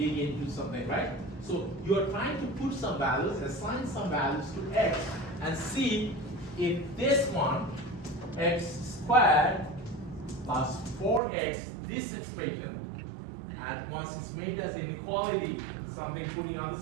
into something, right? So you are trying to put some values, assign some values to x, and see if this one, x squared plus 4x, this expression, and once it's made as inequality, something putting on the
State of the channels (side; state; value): left; drops out; at 11.2 s